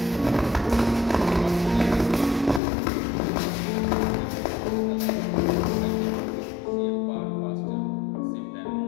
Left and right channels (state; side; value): drops out; right; at 2.6 s